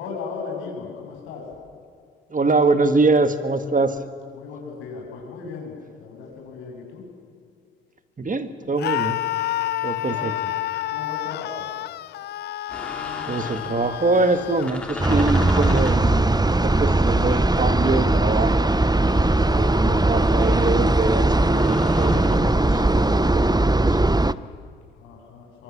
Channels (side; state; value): both; normal; correlation 0.68